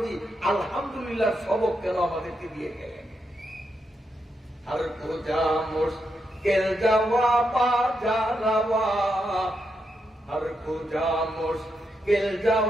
আলহামদুলিল্লাহ সবক কেন আমাদেরকে দিয়ে গেলেন? আর কোজা মুশকিল জওয়াবা জারাওয়া, আর কোজা মুশকিল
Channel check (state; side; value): normal; both; correlation 0.83